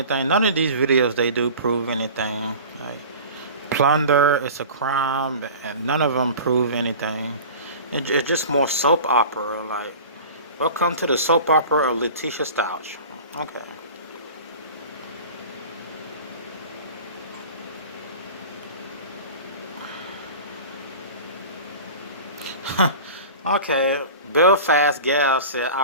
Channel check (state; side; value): inverted; both; correlation -0.38